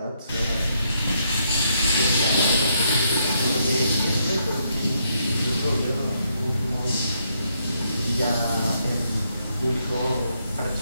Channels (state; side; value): inverted; both; correlation -0.76